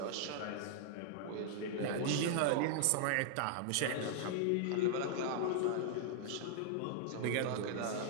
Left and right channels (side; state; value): both; different; correlation -0.01